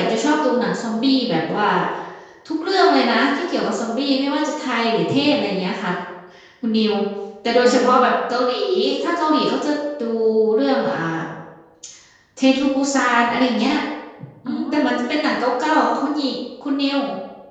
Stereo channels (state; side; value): identical; both; correlation 1.00